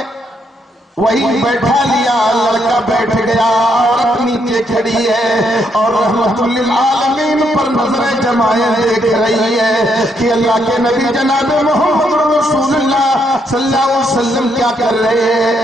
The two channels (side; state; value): both; normal; correlation 0.75